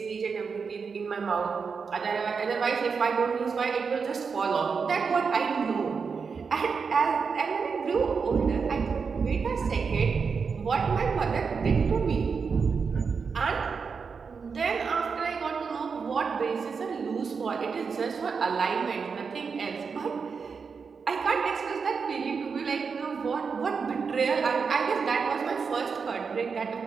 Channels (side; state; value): left; quieter; 5.5 dB